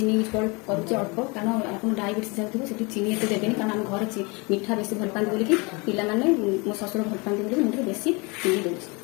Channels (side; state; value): right; quieter; 28.2 dB